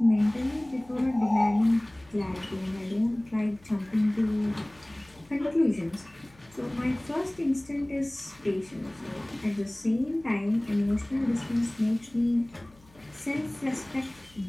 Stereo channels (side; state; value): left; noise; hum, 27 dB below the sound